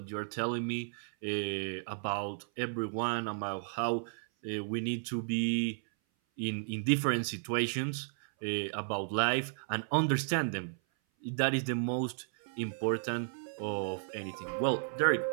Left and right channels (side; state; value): left; silent; 55 dB below the other